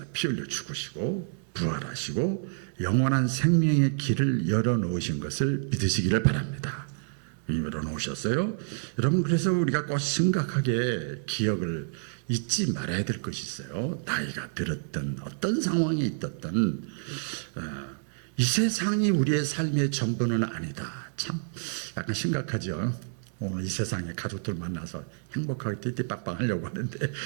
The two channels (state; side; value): silent; left; digital silence